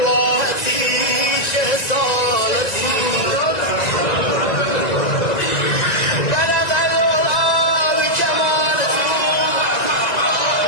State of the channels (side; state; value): right; late; 1.9 ms